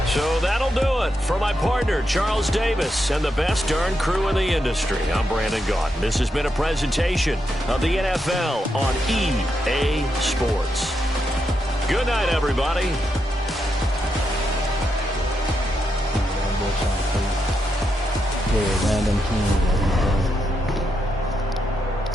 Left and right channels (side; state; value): both; normal; correlation 0.83